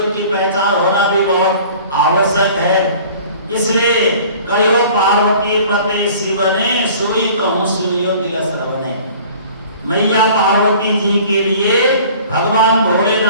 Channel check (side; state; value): both; inverted; correlation -0.48